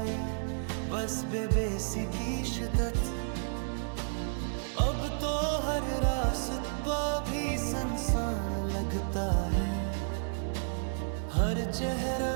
बस बेबसी की शिद्दत। अब तो हर रास्ता भी सुनसान लगता है, हर चेहरा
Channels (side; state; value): left; silent; digital silence